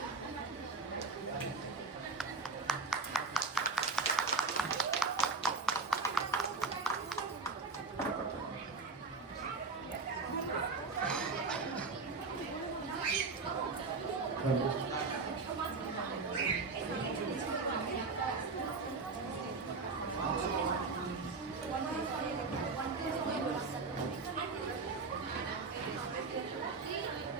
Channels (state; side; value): quieter; left; 4.0 dB